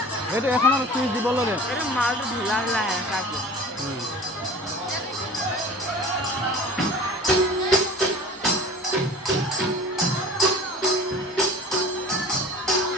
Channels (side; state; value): both; normal; correlation 0.41